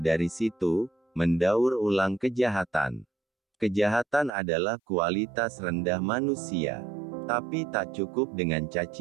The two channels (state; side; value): drops out; left; at 4.3 s